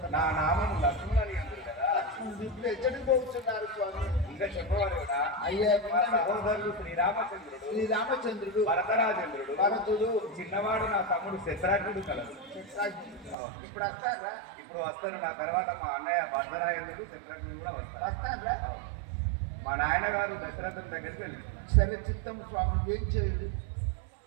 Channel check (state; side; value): drops out; left; at 13.4 s